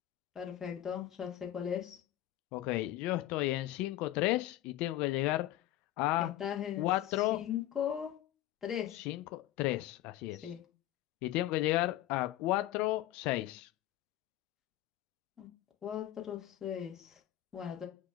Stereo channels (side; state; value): right; quieter; 14.0 dB